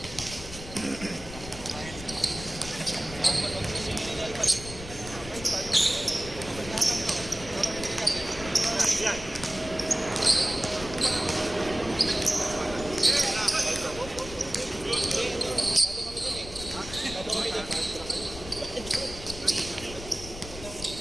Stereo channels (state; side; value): noise; left; rumble, 12 dB below the sound